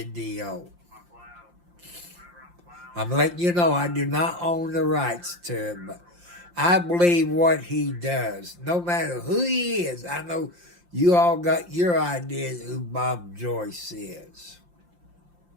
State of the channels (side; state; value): left; late; 5.7 ms